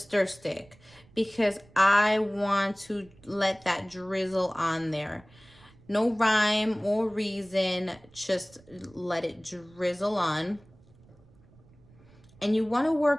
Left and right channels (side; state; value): right; noise; rumble, 27 dB below the sound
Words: stick, because I want to let that drizzle on there. No rhyme or reason, just let it drizzle on. And you wanna